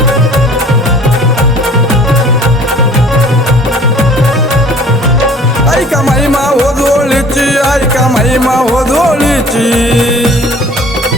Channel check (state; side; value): normal; both; correlation 0.50